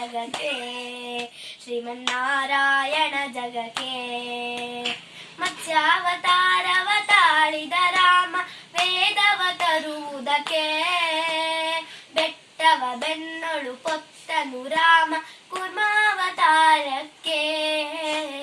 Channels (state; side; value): identical; both; correlation 1.00